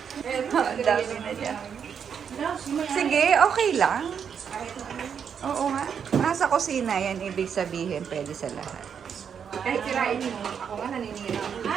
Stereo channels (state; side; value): quieter; left; 7.4 dB